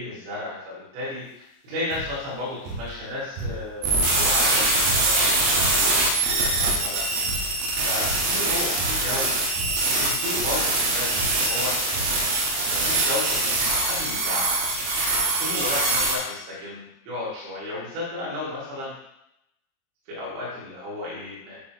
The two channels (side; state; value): left; late; 22 ms